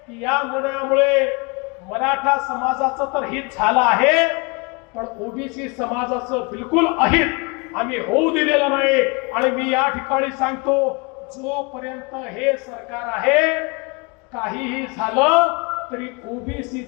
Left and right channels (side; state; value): right; quieter; 29.2 dB